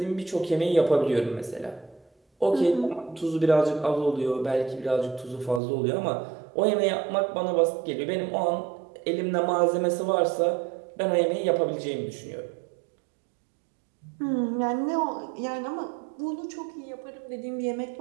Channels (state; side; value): drops out; left; at 5.6 s